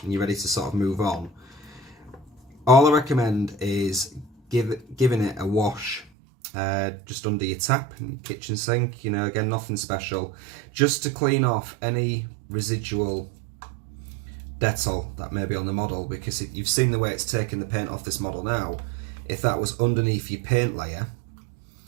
and you're ready to sort of move on, all I recommend is giving it a wash just under your tap in your kitchen sink. You know, again, nothing special, just to clean off any residual Dettol that may be on the model, because you've seen the way it's taken the paint off this model now. If that was underneath your paint layer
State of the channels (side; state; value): left; drops out; at 6.1 s